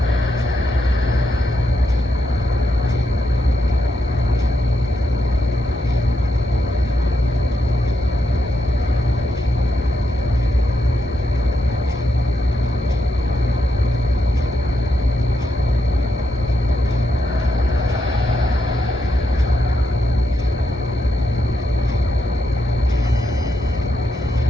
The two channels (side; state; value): both; normal; correlation 0.82